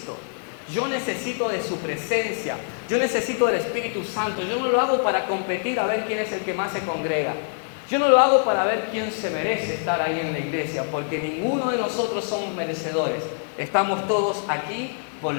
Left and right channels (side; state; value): right; silent; 61 dB below the other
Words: Yo necesito de su presencia. Yo necesito del Espíritu Santo. Yo no lo hago para competir a ver quién es el que más se congrega. Yo no lo hago para ver quién se merece estar ahí en la iglesia. Porque ninguno de nosotros somos merecedores. Estamos todos aquí por